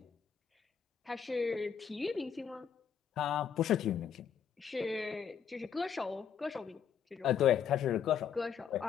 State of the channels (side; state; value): right; quieter; 7.8 dB